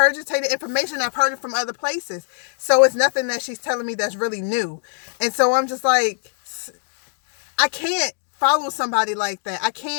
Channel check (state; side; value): silent; right; 62 dB below the other